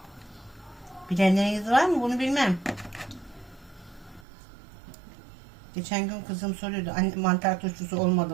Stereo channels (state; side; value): drops out; left; at 4.2 s